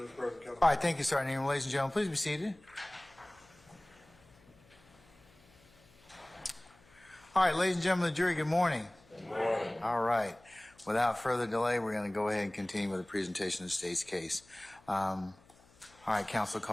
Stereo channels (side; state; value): left; noise; hum, 28 dB below the sound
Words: right, thank you, Sergeant Ingram. Ladies and gentlemen, please be seated. All right, ladies and gentlemen of the jury, good morning. Good morning. All right. Without further delay, we're going to go ahead and continue with the presentation of the state's case. All right, counsel,